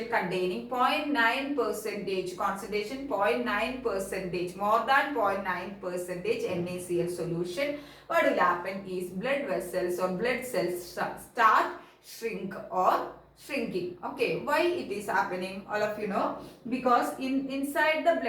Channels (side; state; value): both; identical; correlation 1.00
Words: containing 0.9 percentage concentration, 0.9 percentage, more than 0.9 percentage NaCl solution, what will happen is blood vessels or blood cells start shrink or shrinking. Okay, why it is happening? All of you know, because inside the